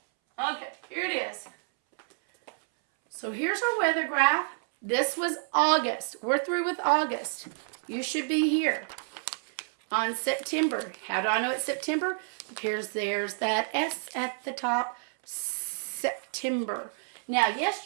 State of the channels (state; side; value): silent; left; 58 dB below the other